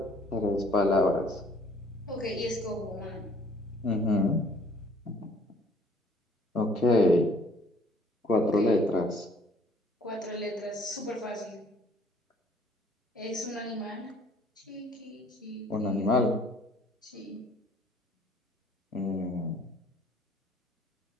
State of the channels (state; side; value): normal; both; correlation 0.58